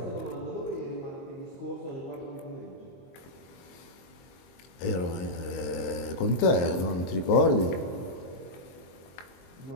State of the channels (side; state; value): right; late; 22 ms